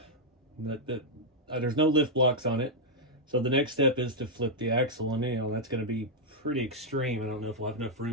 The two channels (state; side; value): normal; both; correlation -0.03